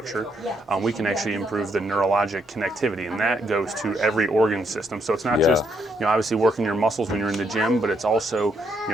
we can actually improve the neurologic connectivity, and that goes to every organ system. So it's not just, obviously working your muscles when you're in the gym, but it's also,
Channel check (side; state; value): both; normal; correlation 0.75